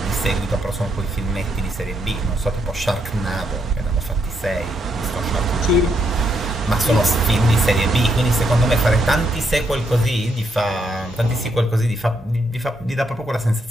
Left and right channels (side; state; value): both; normal; correlation 0.77